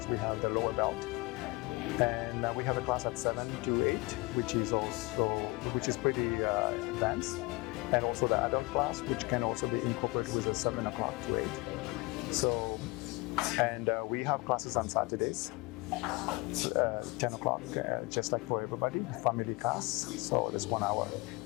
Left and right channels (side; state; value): right; quieter; 24.6 dB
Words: we have the lower belt. And we have a class at 7 to 8, which is pretty advanced. And also the adult class, which can also be incorporated with a 7 o'clock to 8. So, and we have classes on Saturdays, 10 o'clock, just like for everybody, family class. So there's 1 hour,